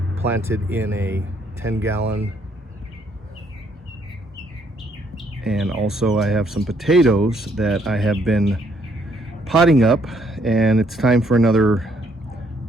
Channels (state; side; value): normal; both; correlation 0.69